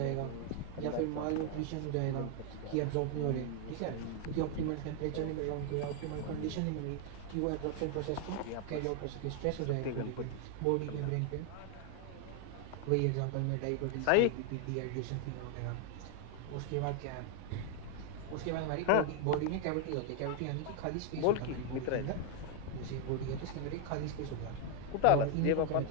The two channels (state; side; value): different; both; correlation 0.00